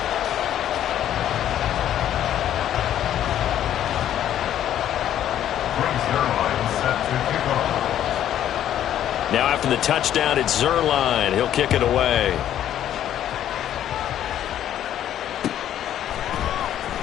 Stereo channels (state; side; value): quieter; right; 11.1 dB